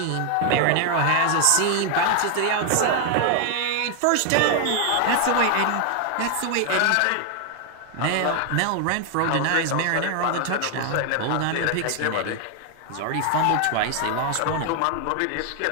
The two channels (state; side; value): different; both; correlation 0.00